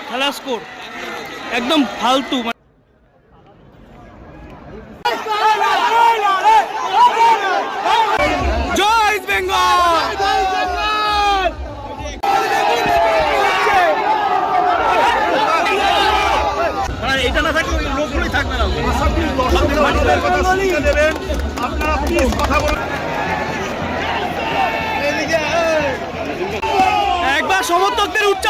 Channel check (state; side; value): identical; both; correlation 1.00